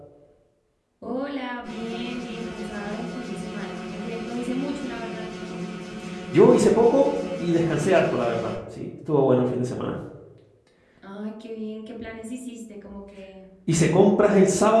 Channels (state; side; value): identical; both; correlation 1.00